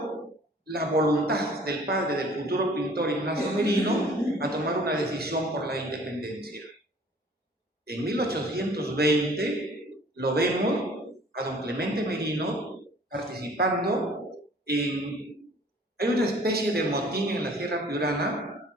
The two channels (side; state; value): both; normal; correlation 0.53